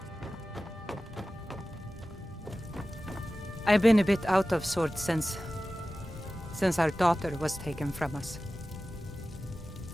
I've been a bit out of sorts since our daughter was taken from us.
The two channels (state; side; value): normal; both; correlation 0.96